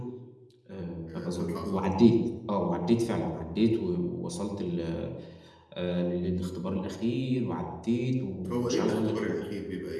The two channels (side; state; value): both; identical; correlation 1.00